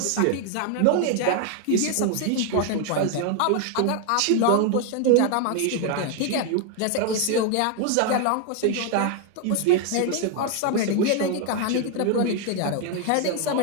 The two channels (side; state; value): both; different; correlation 0.00